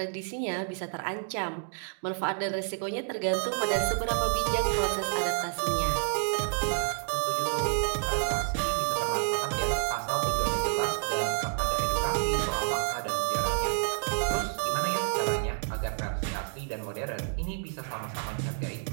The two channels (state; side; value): silent; left; digital silence